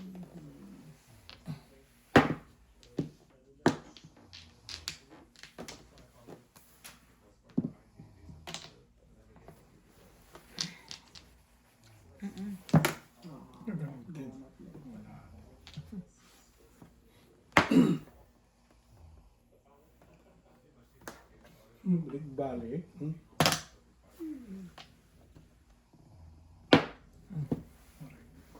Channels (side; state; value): both; identical; correlation 1.00